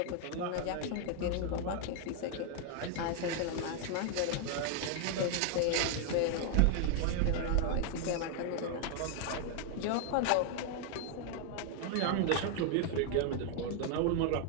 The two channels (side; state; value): both; different; correlation 0.00